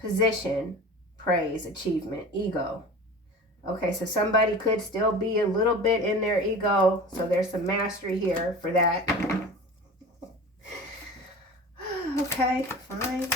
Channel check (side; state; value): both; normal; correlation 0.36